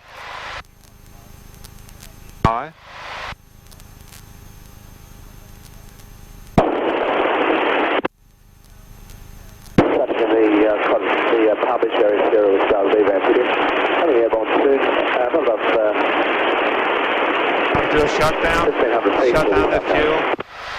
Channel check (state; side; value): identical; both; correlation 1.00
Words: High. Traffic in the Palm Beach area, Sierra with Charles V-Van coming airborne soon. Not enough. Do a shutdown. Shut down the fuel.